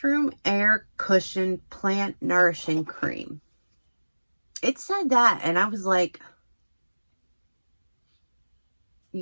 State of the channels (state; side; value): inverted; both; correlation -1.00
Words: Air Cushion Plant Nourishing Cream. It said that, and I was like,